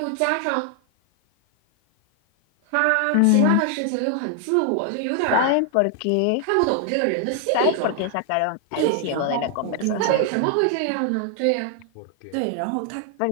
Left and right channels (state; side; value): different; both; correlation 0.00